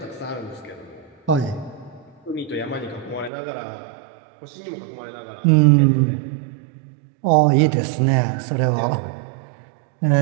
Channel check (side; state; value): left; drops out; at 3.3 s